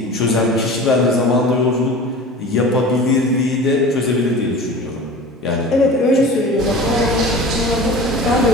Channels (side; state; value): both; normal; correlation 0.37